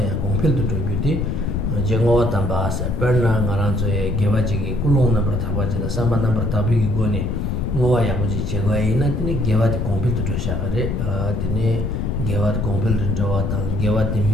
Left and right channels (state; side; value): noise; left; rumble, 1 dB below the sound